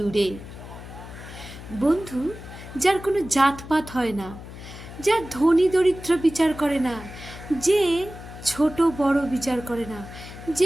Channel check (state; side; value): noise; left; hum, 14 dB below the sound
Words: বন্ধু যার কোনো জাতপাত হয় না, যার ধনী দরিদ্র বিচার করে না, যে ছোট বড় বিচার করে না,